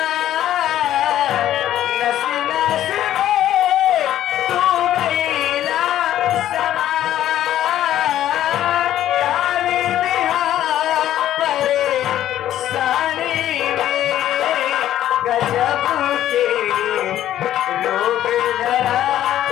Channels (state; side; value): quieter; right; 12.2 dB